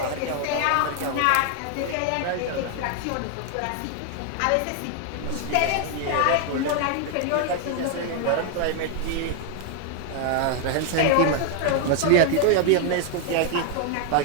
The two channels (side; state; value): both; different; correlation 0.00